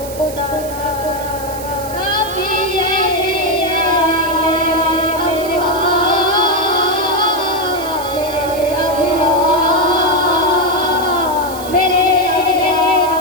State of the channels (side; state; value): right; noise; hiss, 14 dB below the sound